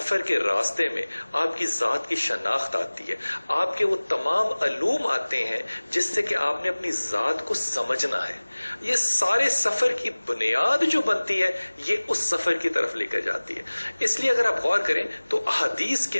کے راستے میں آپ کی ذات کی شناخت آتی ہے، آپ کے وہ تمام علوم آتے ہیں جس سے کہ آپ نے اپنی ذات کو سمجھنا ہے. یہ سارے سفر کی بنیاد جو بنتی ہے یہ اس سفر کی طرف لے کر جاتی ہے. اس لیے اگر آپ غور کریں تو احادیث کے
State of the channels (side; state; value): both; inverted; correlation -1.00